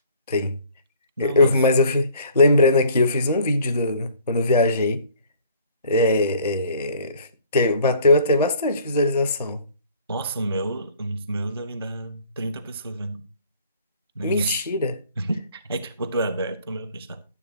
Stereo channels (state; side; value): inverted; both; correlation -0.55